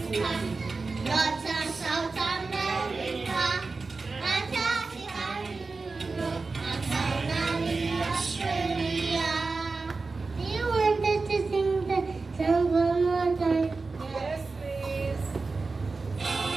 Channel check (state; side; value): quieter; left; 4.0 dB